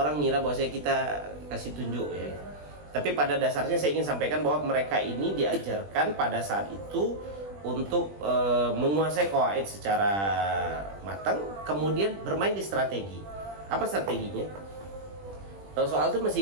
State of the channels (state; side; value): late; left; 20 ms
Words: ngira bahwa kita kasih tunjuk ya. Tapi pada dasarnya saya ingin sampaikan bahwa mereka ini diajarkan pada saat itu untuk menguasai qawaid secara matang, kemudian bermain di strategi. Apa strateginya? Soal itu masih